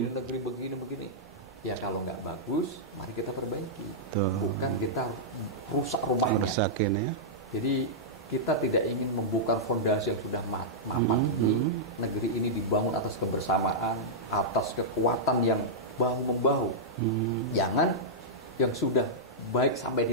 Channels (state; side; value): normal; both; correlation -0.11